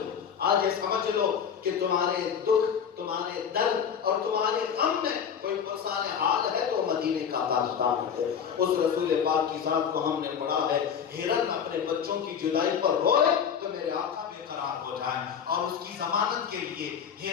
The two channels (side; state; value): right; quieter; 7.6 dB